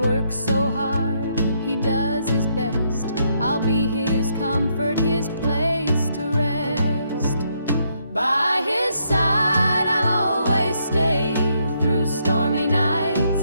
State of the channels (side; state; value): both; inverted; correlation -0.74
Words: so hard, he does his best. I'll be his comfort, his place to rest. By his side I'll always stay, through stormy